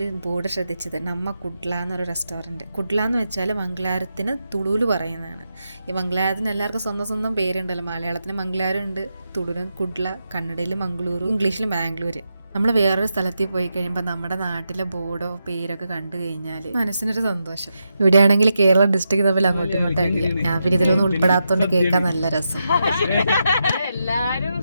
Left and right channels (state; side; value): inverted; both; correlation -0.86